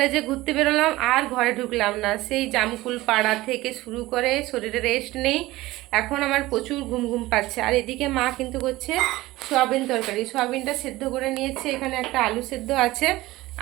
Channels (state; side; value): quieter; left; 18.2 dB